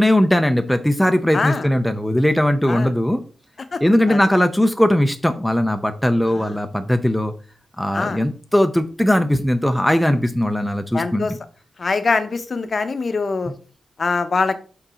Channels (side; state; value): both; normal; correlation 0.97